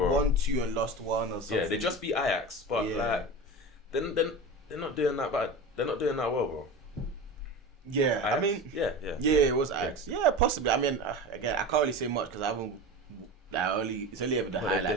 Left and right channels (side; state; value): both; normal; correlation 0.29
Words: 1-2 and lost 1 or something. Yeah, they just beat Ajax, but like, then they're not doing that bad. They're not doing that well, bro. Yeah, Ajax? I mean, yeah, it was Ajax. Yeah, possibly. I mean, again, I can't really say much because I haven't. It's only ever the